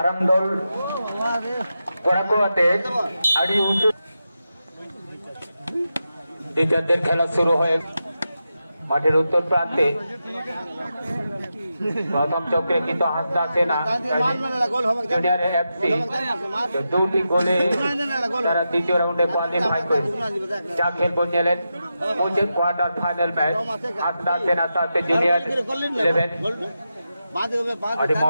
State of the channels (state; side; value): inverted; both; correlation -0.89